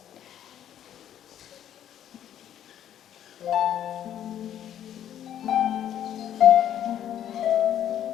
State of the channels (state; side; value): quieter; right; 10.6 dB